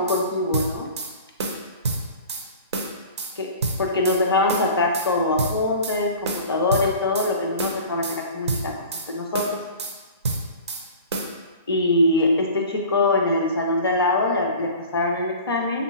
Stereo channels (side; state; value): both; inverted; correlation -0.41